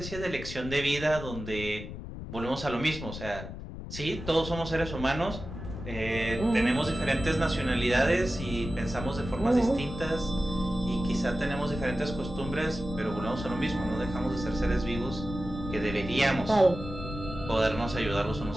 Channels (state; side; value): noise; left; rumble, 9 dB below the sound